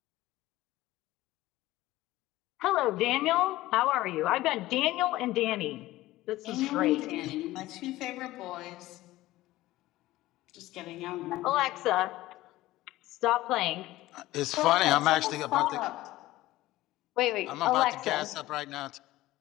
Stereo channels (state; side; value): quieter; right; 16.9 dB